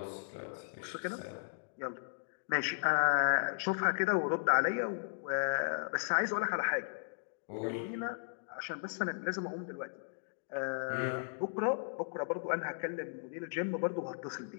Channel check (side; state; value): right; silent; digital silence